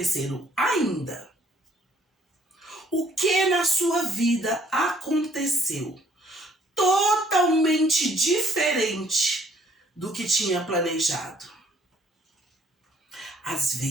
ainda? O que na sua vida aconteceu totalmente diferente do que tinha planejado? Às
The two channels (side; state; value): both; normal; correlation 0.62